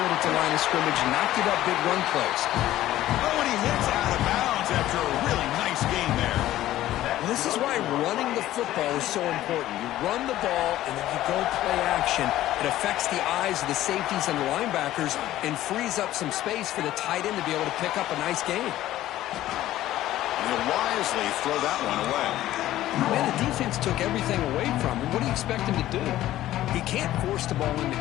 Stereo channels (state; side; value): quieter; right; 14.3 dB